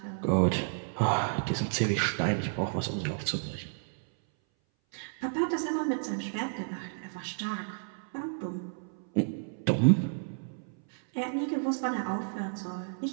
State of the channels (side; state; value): left; silent; 57 dB below the other